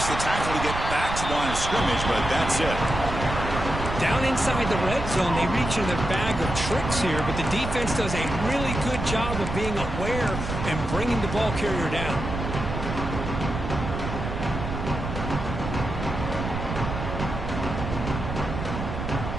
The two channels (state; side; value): noise; right; rumble, 5 dB below the sound